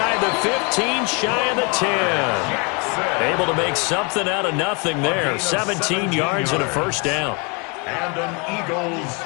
the 15, shy of the 10. Able to make something out of nothing there. 17 yards and a first down. And an Eagles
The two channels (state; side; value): quieter; right; 32.5 dB